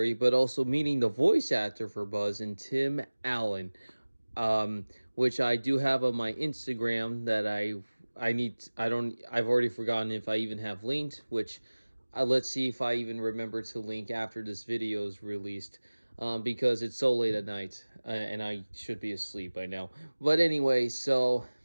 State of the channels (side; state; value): both; inverted; correlation -1.00